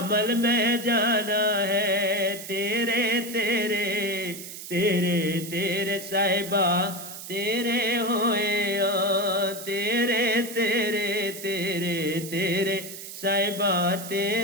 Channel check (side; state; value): right; noise; hiss, 11 dB below the sound